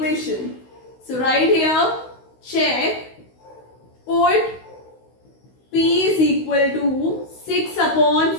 So right here, check, put P is equal to 6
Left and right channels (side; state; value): right; late; 16 ms